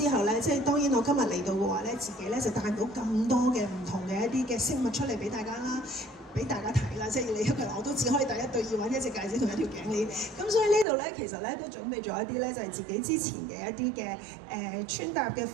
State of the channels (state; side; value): drops out; left; at 10.9 s